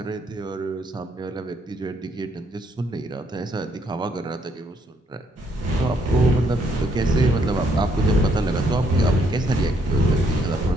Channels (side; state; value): both; normal; correlation 0.70